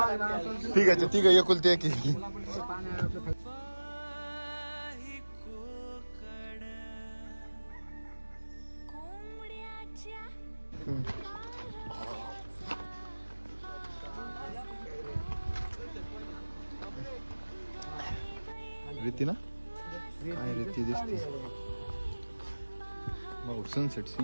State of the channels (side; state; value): both; inverted; correlation -1.00